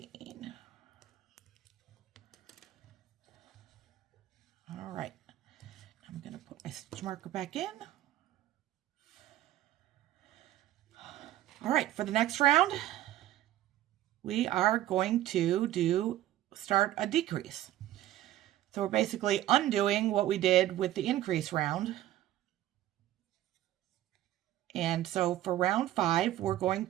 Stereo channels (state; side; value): quieter; left; 13.8 dB